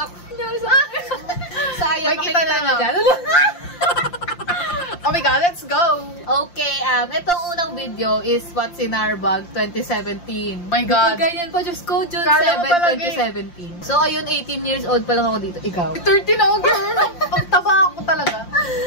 sayang, makikita nyo na dyan. Oh my God, let's go! Okay, itong unang video is What's in Our Bag 2017. My God. Ganyan po, Diyos ko, June Kala 7, 2017. So, ayun, 18 years old pa lang ako dito. Ikaw? 13 ako, girl! Ang taba ako talaga.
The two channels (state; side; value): late; right; 5.7 ms